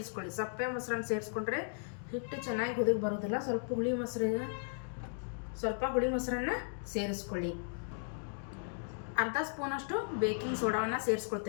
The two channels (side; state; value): right; silent; digital silence